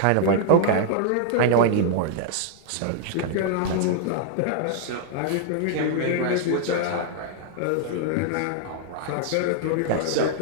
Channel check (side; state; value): both; different; correlation 0.00